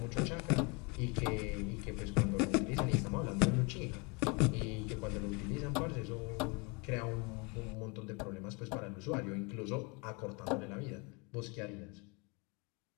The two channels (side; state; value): right; quieter; 30.2 dB